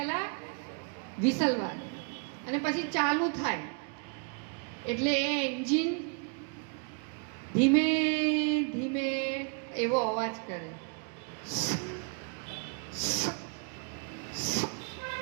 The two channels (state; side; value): quieter; left; 37.8 dB